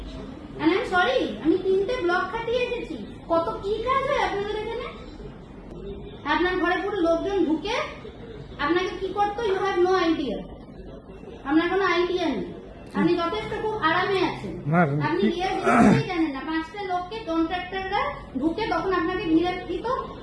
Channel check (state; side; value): identical; both; correlation 1.00